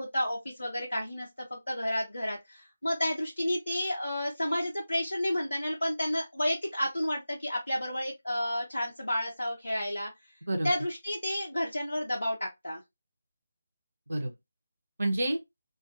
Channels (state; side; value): inverted; both; correlation -0.95